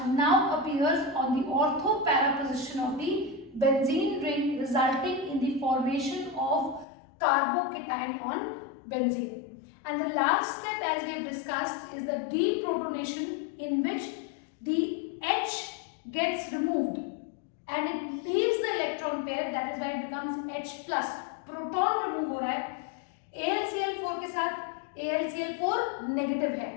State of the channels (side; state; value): right; drops out; at 6.9 s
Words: now appears on the ortho para position of the benzene ring, resulting in the formation of carbocation on benzene. And the last step, as we have discussed, is the deprotonation, in which the H gets removed and it leaves the electron pair. That is why it becomes H plus. Proton remove हो रहा है. AlCl4 के साथ AlCl4 negative है,